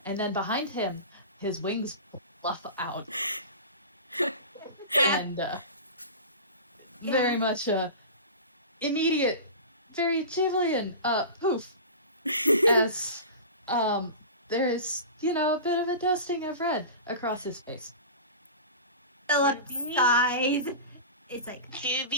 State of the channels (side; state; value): both; inverted; correlation -0.32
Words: And then behind him, his wings fluff out. And, very much, immediate, very Jubilean, poof. As, there is, a bit of a dusting of red across his face. Philip Juby? sighs. It's like,